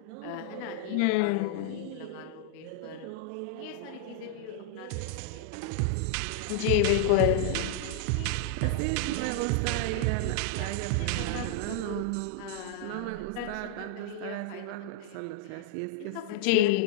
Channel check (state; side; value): different; both; correlation -0.01